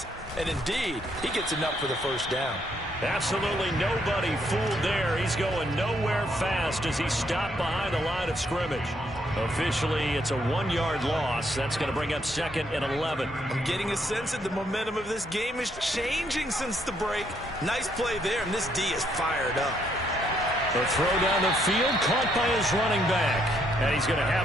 and indeed, he gets enough for the 1st down. Absolutely nobody fooled there. He's going nowhere fast as he stopped behind the line of scrimmage. Officially, it's a 1-yard loss. That's going to bring up 2nd and 11. I'm getting a sense that the momentum of this game is changing since the break. Nice play there, and this D is fired up. The throw down the field caught by his running back. And he's going to have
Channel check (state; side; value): normal; both; correlation 0.72